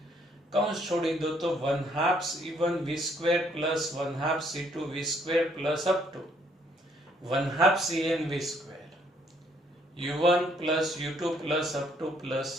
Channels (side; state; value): both; normal; correlation 0.67